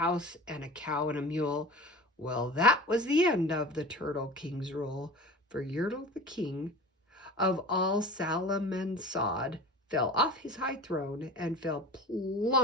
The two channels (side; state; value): both; normal; correlation 0.37